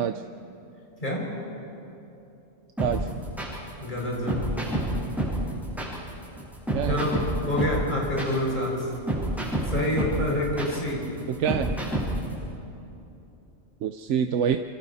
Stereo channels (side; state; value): both; normal; correlation 0.19